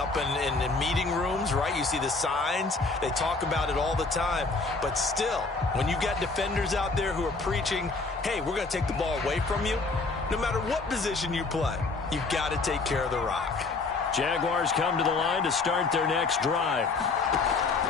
in meeting rooms, right? You see the signs. They talk about it all the time. But still, when you've got defenders out there who are preaching, hey, we're going to take the ball away from you, no matter what position you play, you've got to take care of the rock. Jaguars come to the line to start their next drive.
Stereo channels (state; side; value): quieter; right; 3.9 dB